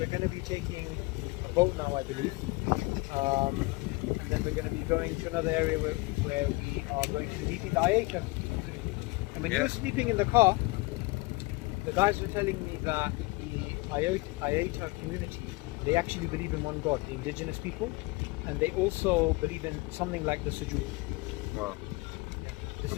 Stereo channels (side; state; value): right; quieter; 24.1 dB